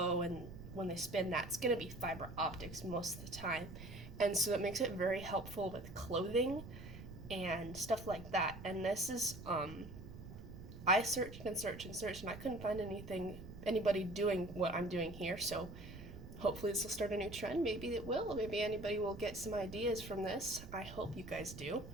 and when they spin, that's gonna be fiber optics most of the time. And so it makes it very helpful with clothing and stuff like that. And this is, I searched and searched and searched, and I couldn't find anybody doing what I'm doing here. So hopefully this will start a new trend. Maybe it will. Maybe anybody will get some ideas from this. I hope you guys do.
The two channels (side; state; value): right; noise; rumble, 13 dB below the sound